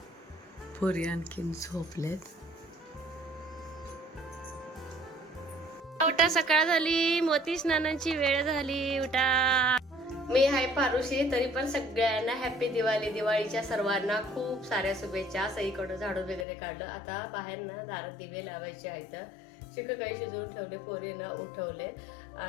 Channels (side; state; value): right; drops out; at 16.4 s